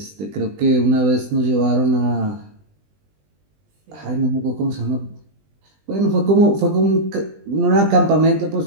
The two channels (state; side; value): late; left; 20 ms